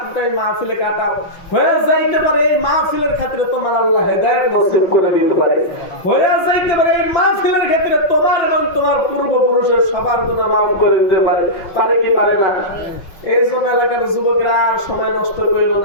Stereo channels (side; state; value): right; late; 5.8 ms